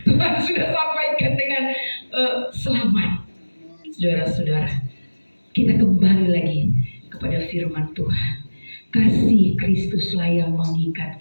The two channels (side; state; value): both; inverted; correlation -1.00